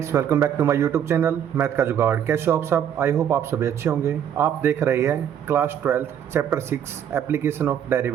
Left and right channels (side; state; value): left; quieter; 9.3 dB